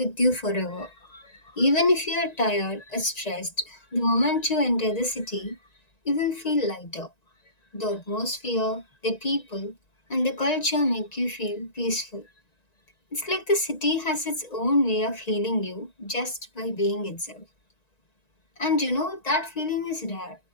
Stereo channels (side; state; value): right; late; 1.9 ms